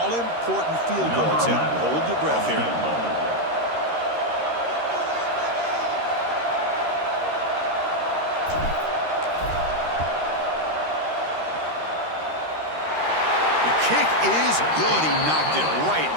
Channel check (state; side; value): late; left; 13 ms